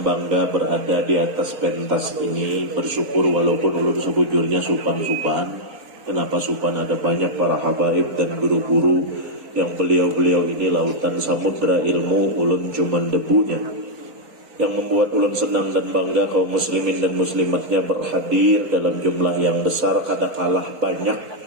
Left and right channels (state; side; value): late; left; 3.8 ms